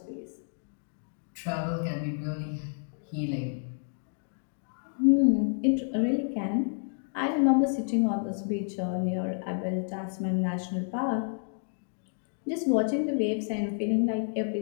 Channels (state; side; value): silent; right; digital silence